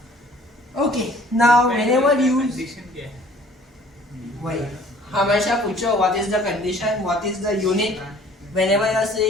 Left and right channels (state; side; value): normal; both; correlation 0.54